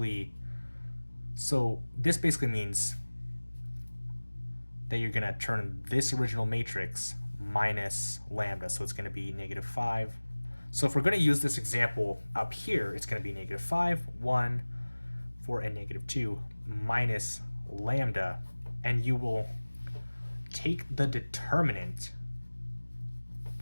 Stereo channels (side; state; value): both; inverted; correlation -1.00